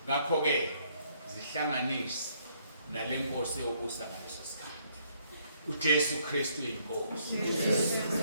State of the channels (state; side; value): inverted; both; correlation -0.69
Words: Ngakho ke zihlanganise nale nkosi yobusa ngaleso sikhathi. uJesu Kristu inkosi.